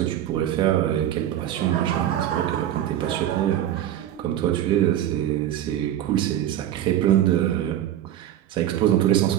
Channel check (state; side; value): quieter; left; 11.7 dB